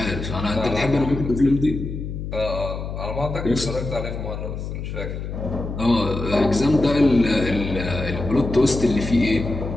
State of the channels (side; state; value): left; noise; hum, 6 dB below the sound